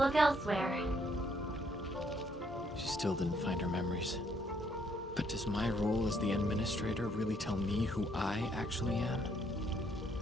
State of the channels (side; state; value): both; normal; correlation 0.69